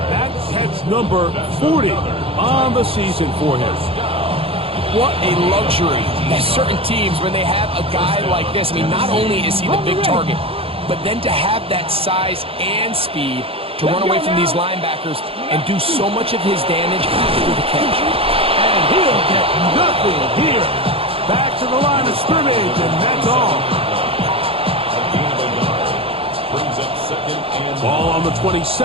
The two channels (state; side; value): late; left; 0.27 ms